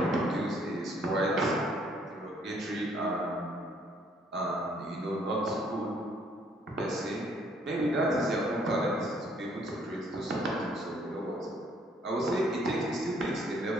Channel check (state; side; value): normal; both; correlation 0.65